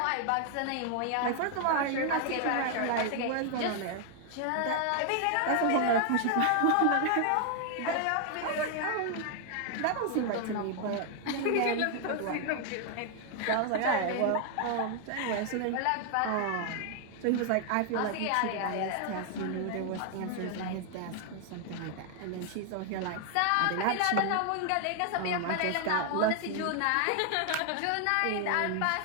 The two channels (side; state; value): both; different; correlation 0.00